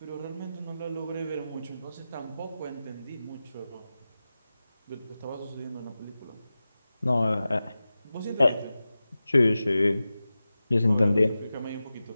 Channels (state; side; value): inverted; both; correlation -0.95